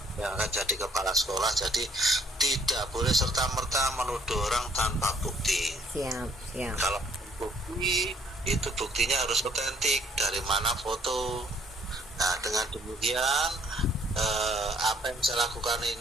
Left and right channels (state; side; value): normal; both; correlation 0.63